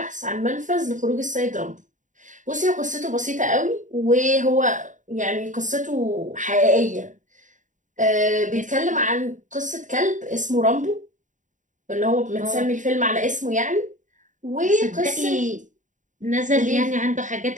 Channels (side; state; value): left; late; 0.36 ms